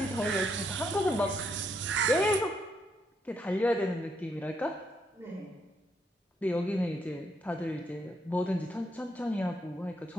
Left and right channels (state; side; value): normal; both; correlation 0.76